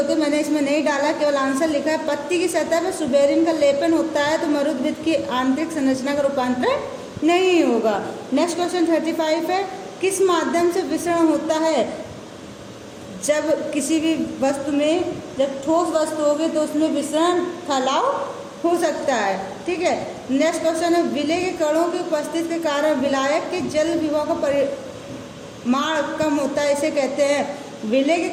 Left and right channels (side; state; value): both; identical; correlation 1.00